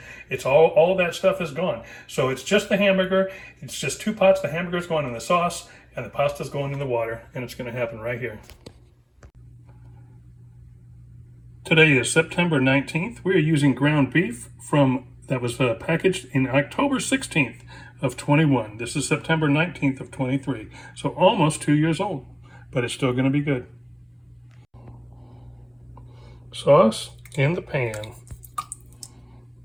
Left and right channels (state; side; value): identical; both; correlation 1.00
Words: It's all that stuff is gone. So it's just the hamburger. It's just 2 pots. The hamburger's going in the sauce and the pasta's going in the water, and it's going to happen right here. Today is September 19th. We are using ground beef that was packaged in October 16th of 21. This is September 19th of 23. So almost 2 years old, but it's still going to be good. Sauce in the pan.